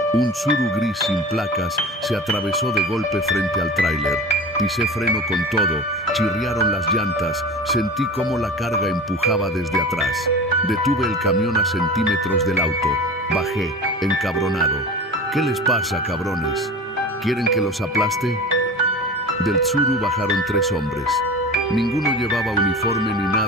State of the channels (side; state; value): both; normal; correlation 0.34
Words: un Tsuru gris sin placas se atravesó de golpe frente al tráiler. Pisé freno con todo, chirriaron las llantas, sentí cómo la carga empujaba desde atrás. Detuve el camión a centímetros del auto. Bajé, encabronado. ¿Qué les pasa, cabrones? ¿Quieren que los aplaste? Del Tsuru bajaron 3 hombres. Ninguno llevaba uniforme ni